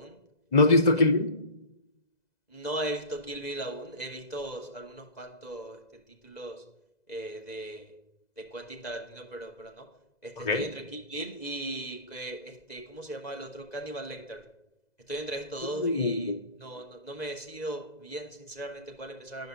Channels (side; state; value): right; late; 2.0 ms